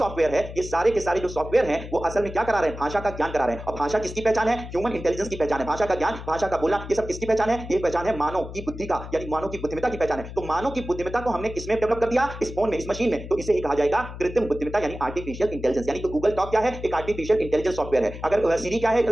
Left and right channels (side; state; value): left; noise; hum, 11 dB below the sound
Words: है, ये सारे के सारे जो सॉफ्टवेयर हैं वो असल में क्या करा रहे हैं, भाषा का ज्ञान करा रहे हैं। और भाषा किसकी पहचान है, ह्यूमन इंटेलिजेंस की पहचान है। भाषा का ज्ञान, भाषा का बोलना, ये सब किसकी पहचान है, ये पहचान है मानव की बुद्धि का, यानी मानव की बुद्धिमत्ता की पहचान है। तो मानव की बुद्धिमत्ता को हमने किसमें डेवलप कर दिया, इस फोन में, इस मशीन में। तो इसे ही कहा जाएगा कृत्रिम बुद्धिमत्ता यानी आर्टिफिशियल इंटेलिजेंस। यानी कि गूगल टॉक क्या है, एक आर्टिफिशियल इंटेलिजेंस सॉफ्टवेयर है। अगर सीरी क्या है